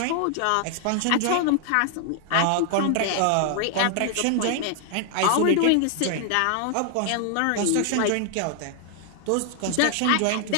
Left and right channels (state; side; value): different; both; correlation 0.00